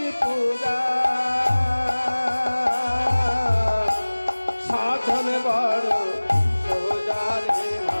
পূজা, সাধন বড় সোজা রে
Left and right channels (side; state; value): both; inverted; correlation -1.00